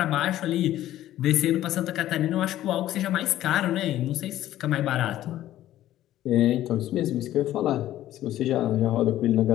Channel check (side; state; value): right; quieter; 13.5 dB